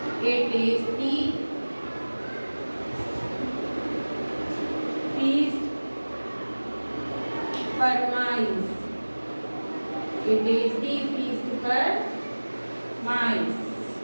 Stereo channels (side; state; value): both; inverted; correlation -1.00